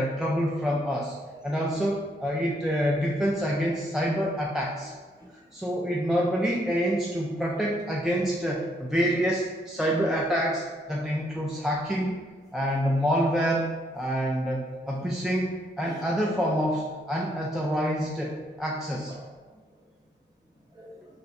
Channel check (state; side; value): normal; both; correlation 0.72